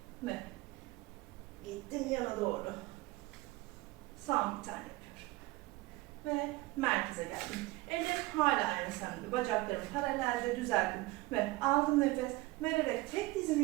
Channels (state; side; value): quieter; left; 19.9 dB